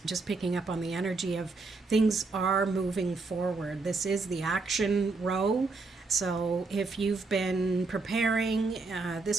just picking up on the energy of things are moving forward. This is the action row. So if you've been preparing,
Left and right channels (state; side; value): quieter; left; 3.8 dB